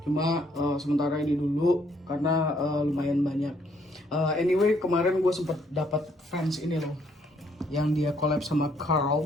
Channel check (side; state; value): both; normal; correlation 0.68